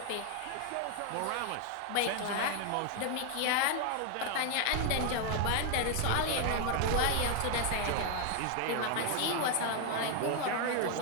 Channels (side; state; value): both; different; correlation 0.00